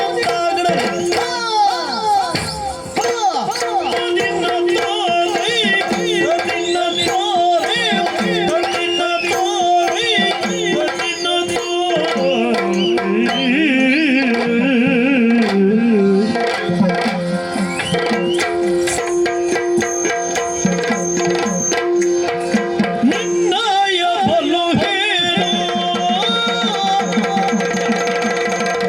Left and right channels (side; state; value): both; identical; correlation 1.00